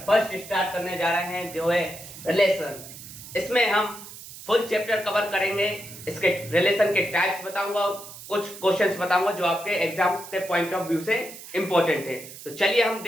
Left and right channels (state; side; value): noise; right; hiss, 14 dB below the sound